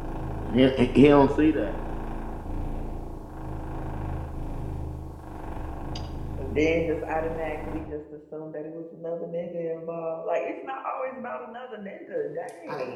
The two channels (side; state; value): both; identical; correlation 1.00